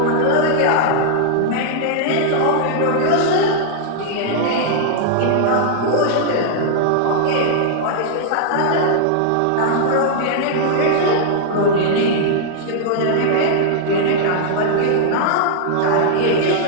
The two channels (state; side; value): different; both; correlation -0.01